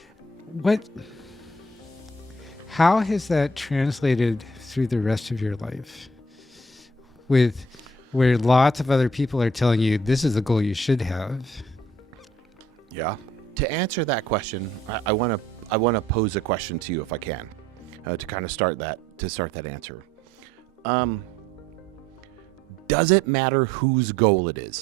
How has that translated through the rest of your life? Where lots of other people are telling you this is the goal you should have. Yeah. To answer that question, I want to pose a question to you if I can, to kind of start that answer. Does it matter whose goal it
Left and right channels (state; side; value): normal; both; correlation 0.62